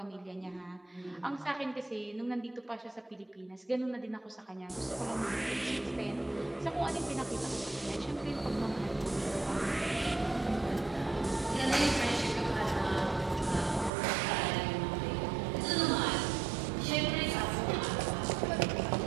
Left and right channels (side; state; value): left; drops out; at 13.9 s